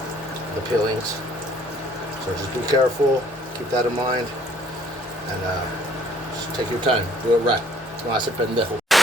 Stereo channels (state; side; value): normal; both; correlation 0.59